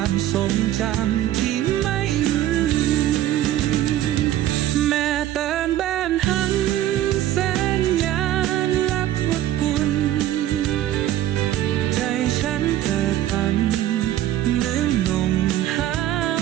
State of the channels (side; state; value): left; quieter; 13.0 dB